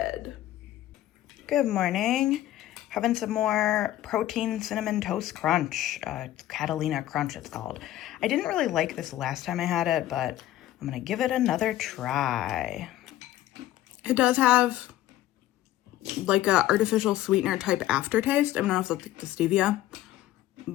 Good morning. Having some more protein cinnamon toast crunch. Catalina Crunch it's called. I didn't really like this last time I had it, but I'm gonna give it another try. It does have like a artificial sweetener type aftertaste. I don't know if that's like the stevia,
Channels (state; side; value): quieter; right; 14.0 dB